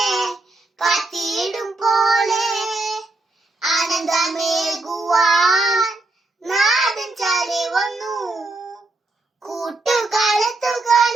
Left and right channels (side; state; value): left; quieter; 3.1 dB